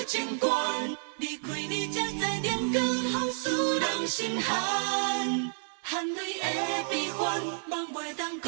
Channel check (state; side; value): silent; left; 58 dB below the other